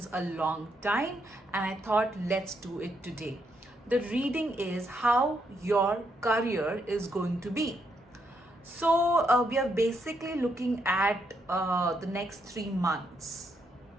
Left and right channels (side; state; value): both; normal; correlation 0.77